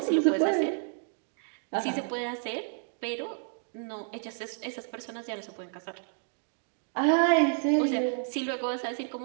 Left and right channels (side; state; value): left; silent; digital silence